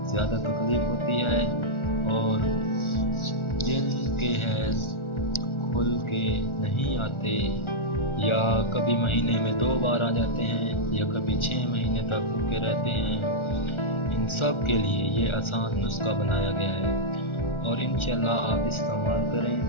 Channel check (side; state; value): right; late; 1.4 ms